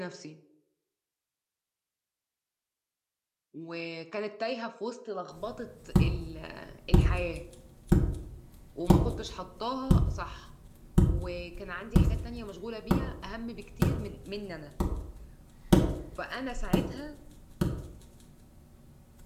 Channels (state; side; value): identical; both; correlation 1.00